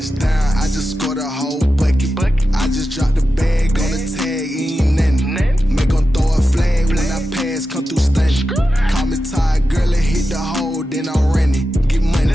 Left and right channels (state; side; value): normal; both; correlation 0.91